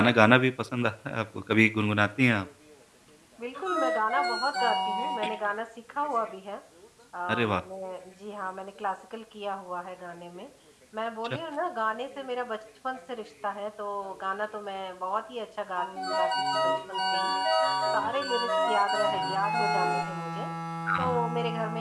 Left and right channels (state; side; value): identical; both; correlation 1.00